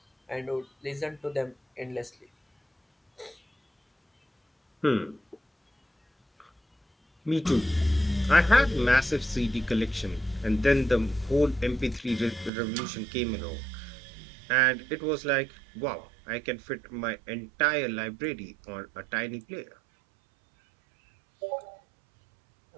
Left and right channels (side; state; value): left; drops out; at 12.5 s